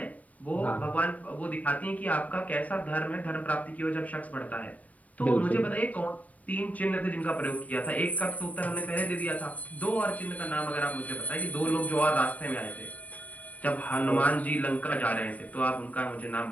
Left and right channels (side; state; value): right; late; 0.070 ms